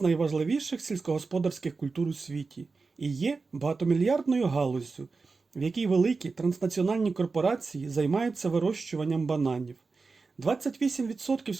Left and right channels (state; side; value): quieter; left; 4.2 dB